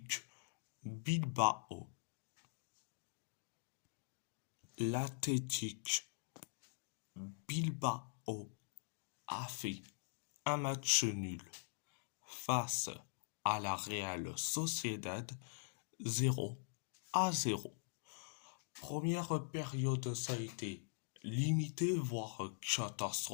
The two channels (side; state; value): right; silent; digital silence